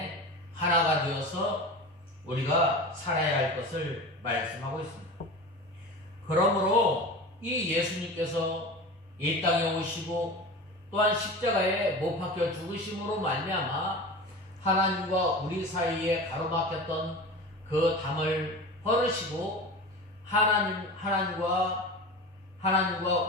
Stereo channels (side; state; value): both; normal; correlation 0.31